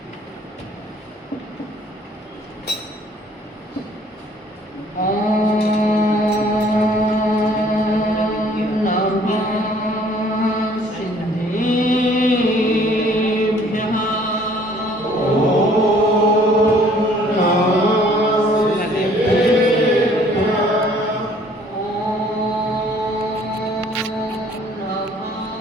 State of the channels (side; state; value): both; normal; correlation 0.57